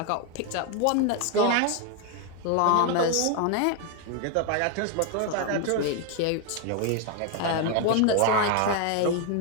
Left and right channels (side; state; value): both; different; correlation 0.01